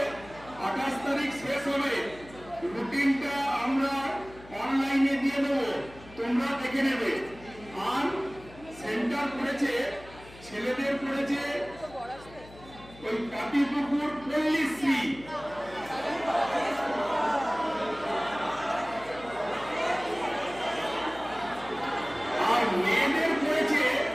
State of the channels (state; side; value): noise; left; hum, 20 dB below the sound